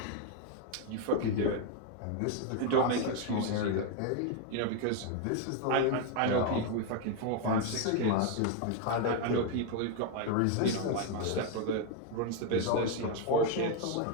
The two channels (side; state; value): both; different; correlation 0.01